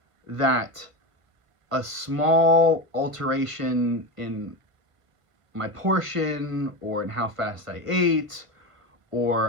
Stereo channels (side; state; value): left; late; 1.5 ms